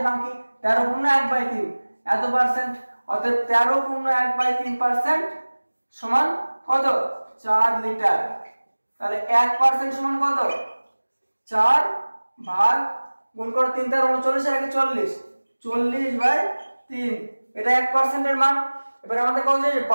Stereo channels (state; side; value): inverted; both; correlation -1.00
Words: বাকি, 13 পূর্ণ 1/3 এত পার্সেন্ট, অর্থাৎ 13 পূর্ণ 1/3% সমান কত, 4 লিটার। তাহলে 1% সমান কত, 4 ভাগ গুণ করো 3 × 39 এর আগে 40, 40/3, এটা 1% এর মান। এবার আমাদের কথা হচ্ছে